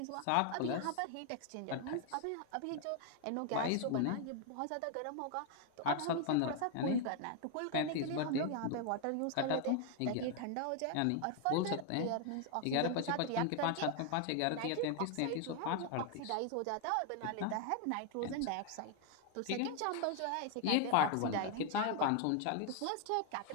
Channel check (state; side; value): different; both; correlation 0.00